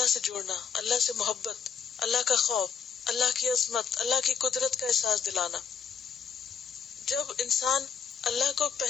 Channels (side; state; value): right; quieter; 6.9 dB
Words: سے جوڑنا، اللہ سے محبت، اللہ کا خوف، اللہ کی عظمت، اللہ کی قدرت کا احساس دلانا۔ جب انسان اللہ کو